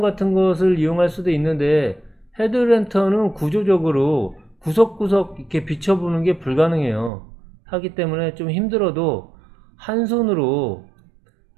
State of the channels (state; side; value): drops out; left; at 7.1 s